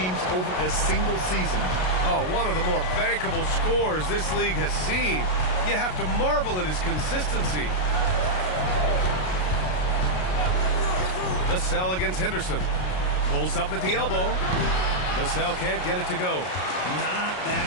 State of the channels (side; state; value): right; late; 33 ms